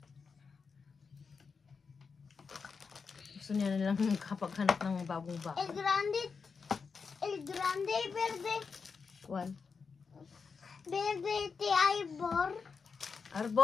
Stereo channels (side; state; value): right; quieter; 5.3 dB